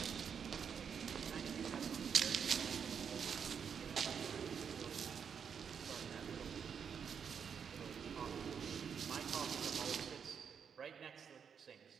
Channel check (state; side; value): quieter; left; 7.1 dB